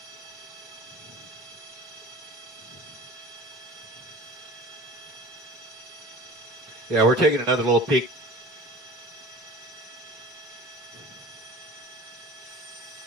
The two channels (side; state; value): both; normal; correlation 0.40